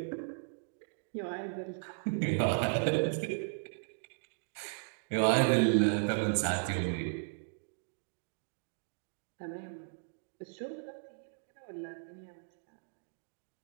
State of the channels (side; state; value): left; silent; digital silence